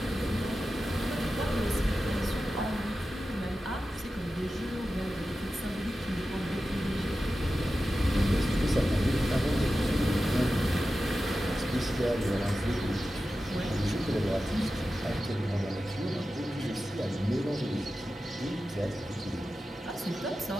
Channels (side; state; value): both; normal; correlation 0.93